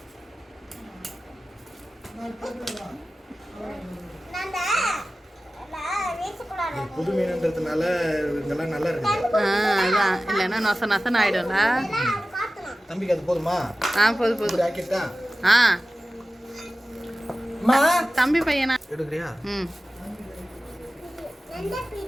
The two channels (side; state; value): both; normal; correlation 0.95